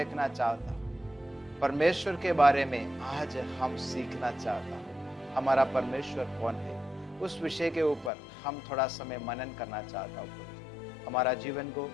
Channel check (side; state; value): right; drops out; at 8.1 s